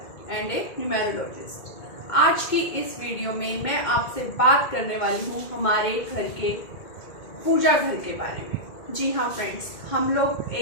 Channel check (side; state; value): right; late; 2.2 ms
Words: and a numerologist. आज की इस वीडियो में मैं आपसे बात करने वाली हूँ हमारे घर के पूजा घर के बारे में। जी हाँ फ्रेंड्स, हम लोग